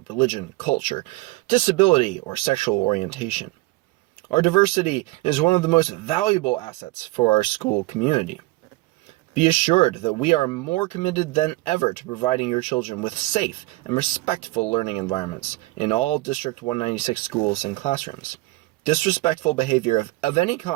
religion, culture, disability, or sexual orientation. Our diversity is one of the most valuable assets for our school community. Be assured that we are more committed than ever to providing your children with safe and respectful learning environments in all District 196 schools and classrooms. Disrespectful behavior of any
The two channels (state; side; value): quieter; left; 21.4 dB